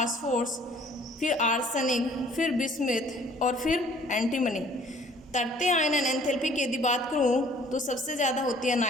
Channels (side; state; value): both; normal; correlation 0.56